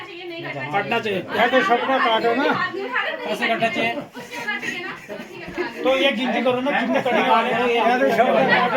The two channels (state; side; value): identical; both; correlation 1.00